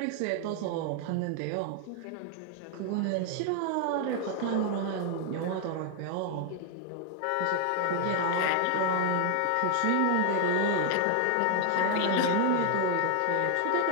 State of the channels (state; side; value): different; both; correlation 0.00